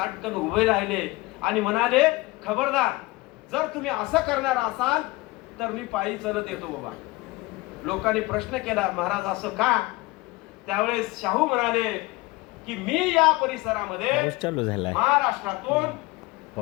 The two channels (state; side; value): quieter; right; 21.4 dB